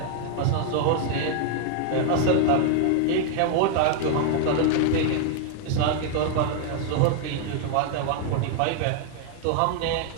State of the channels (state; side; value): different; both; correlation 0.00